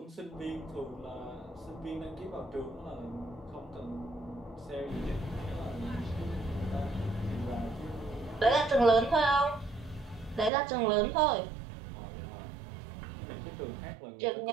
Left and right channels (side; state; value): left; drops out; at 10.5 s